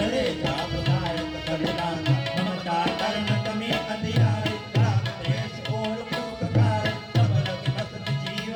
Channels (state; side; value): identical; both; correlation 1.00